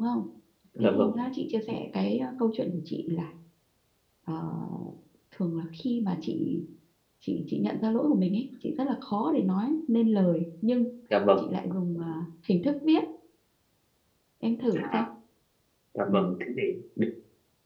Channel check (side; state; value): both; identical; correlation 1.00